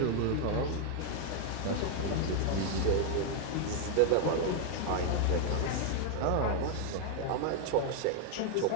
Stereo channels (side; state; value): both; different; correlation 0.00